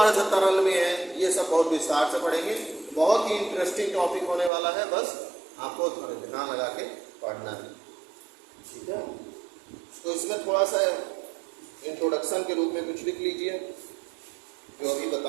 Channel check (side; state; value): left; drops out; at 4.5 s